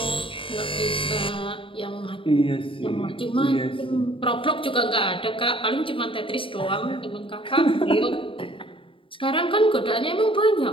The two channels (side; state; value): right; late; 0.25 ms